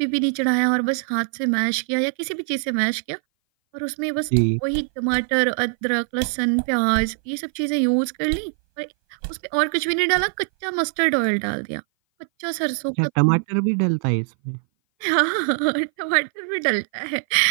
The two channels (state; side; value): silent; left; 58 dB below the other